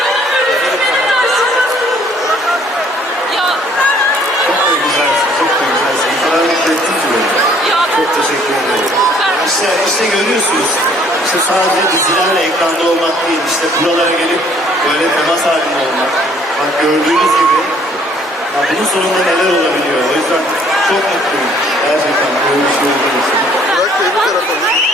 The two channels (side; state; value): both; normal; correlation 0.60